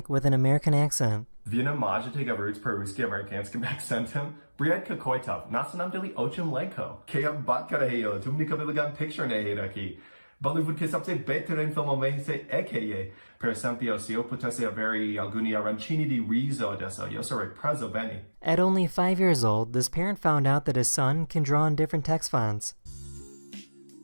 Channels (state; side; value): inverted; both; correlation -1.00